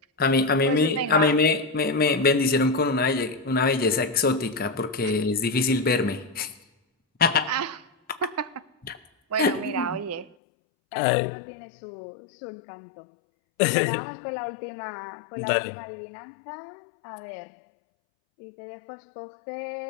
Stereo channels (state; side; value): drops out; right; at 10.4 s